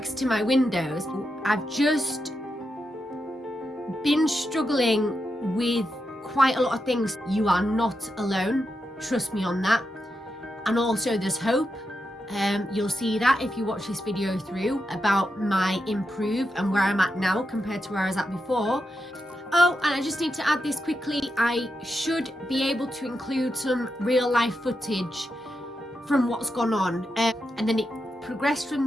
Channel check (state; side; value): normal; both; correlation 0.86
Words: to my windows. I've just been struggling with quite a lot of things. You are not alone, trust me on that. And also there's hope. You'll see that if you watch this video through about my improve and where I'm at now compared to where I was at before. Oh, and I just need to add this quickly. I should be able to include some real life footage from what's gone on. And then it progressed